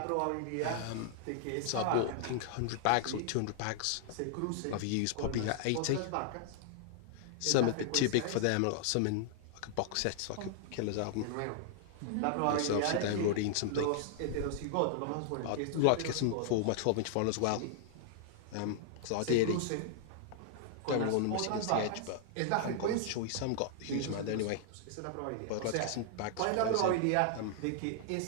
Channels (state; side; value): different; both; correlation -0.01